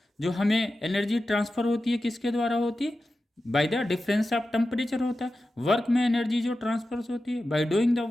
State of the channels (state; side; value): normal; both; correlation 0.93